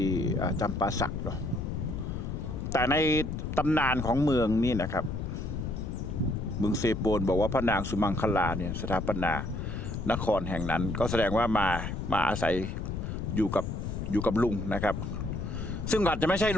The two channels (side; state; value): left; noise; rumble, 4 dB below the sound